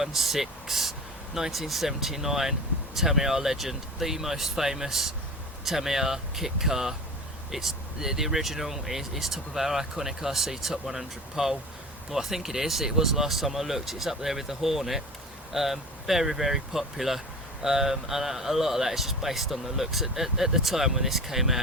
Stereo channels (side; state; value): both; normal; correlation 0.34